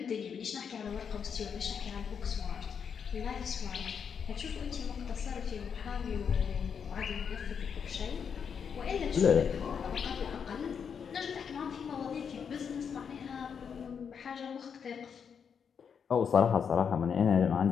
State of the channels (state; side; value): quieter; right; 6.9 dB